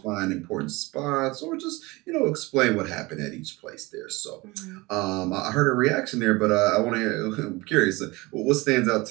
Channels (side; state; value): left; quieter; 22.9 dB